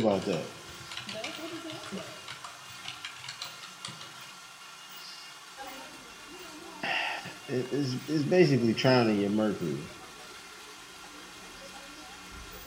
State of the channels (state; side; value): identical; both; correlation 1.00